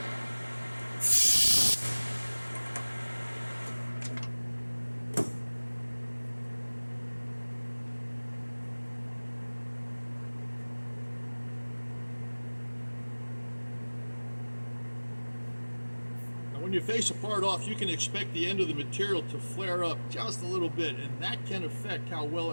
When you face a part off, you can expect the end of the material to flare up just a little bit, and that can affect how well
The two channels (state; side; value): inverted; both; correlation -1.00